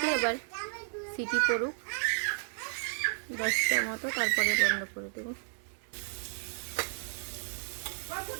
এবার সিটি পড়ুক 10টার মতো, তারপরে বন্ধ করে দেবো।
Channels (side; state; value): left; silent; 56 dB below the other